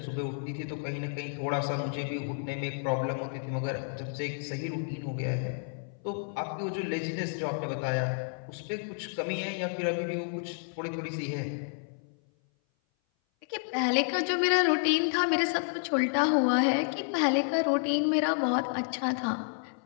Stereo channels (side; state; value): right; silent; 57 dB below the other